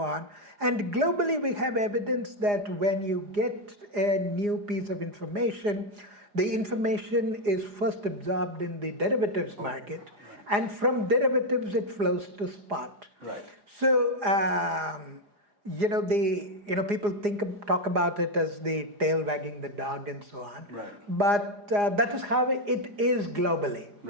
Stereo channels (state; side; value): late; left; 4.9 ms